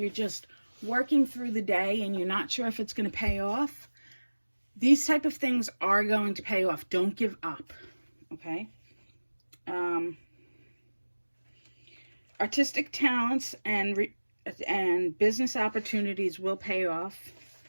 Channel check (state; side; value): inverted; both; correlation -1.00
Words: just working through the day and you're not sure if it's going to pay off, these type of things are going to pay off. Don't give up, okay? Artistic talents and business opportunities will pay off.